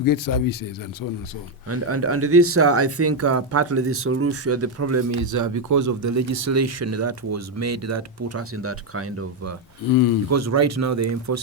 get services and so on and so on. And this, I think, partly the solution, the problem is because of the legislation that was made that put us in that kind of, because right now they're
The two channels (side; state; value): both; normal; correlation 0.05